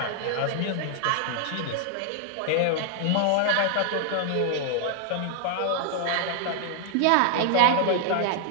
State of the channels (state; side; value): different; both; correlation 0.00